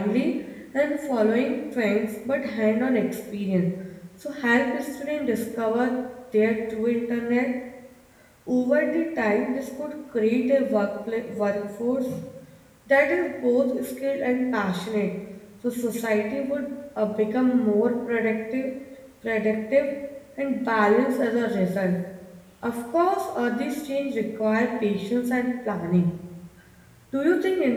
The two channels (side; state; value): both; identical; correlation 1.00